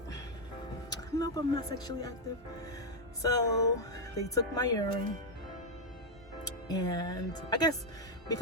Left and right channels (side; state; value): both; normal; correlation 0.01